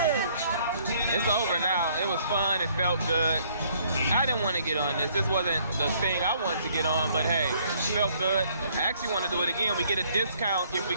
It's over now. It was fun. It felt good. I didn't want to get on this. This wasn't the thing I wanted to get on, but hey, it felt good. I actually want to do it again. We get a discount if we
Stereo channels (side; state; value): both; inverted; correlation -0.63